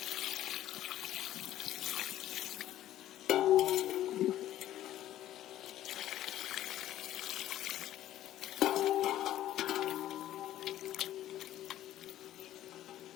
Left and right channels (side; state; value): right; quieter; 13.0 dB